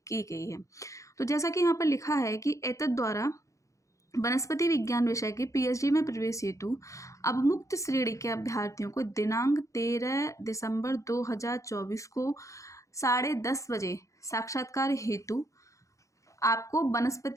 की गई है। तो जैसा कि यहाँ पर लिखा है कि एतद द्वारा वनस्पति विज्ञान विषय के पीएचडी में प्रवेश हेतु अवमुक्त श्रेणी के अभ्यर्थियों को दिनांक 13 दिसंबर 2024 को 10:30 बजे साक्षात्कार हेतु आपको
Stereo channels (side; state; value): right; late; 0.15 ms